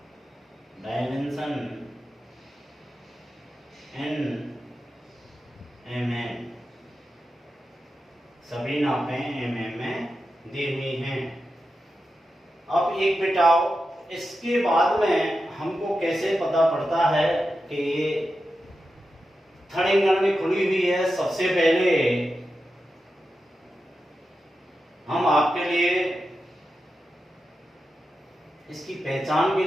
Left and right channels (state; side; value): normal; both; correlation 0.90